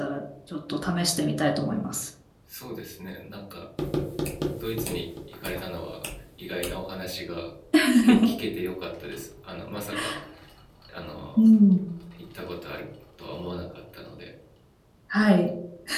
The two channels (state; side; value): identical; both; correlation 1.00